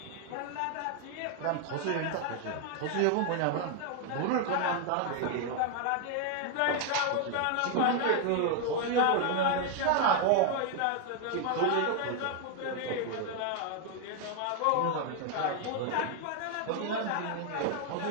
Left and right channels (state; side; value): different; both; correlation 0.01